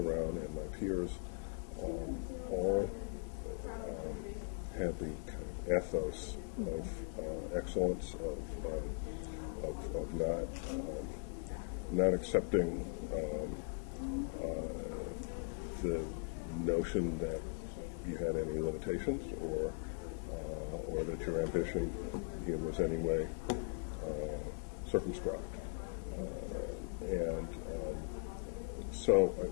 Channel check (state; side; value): quieter; right; 39.1 dB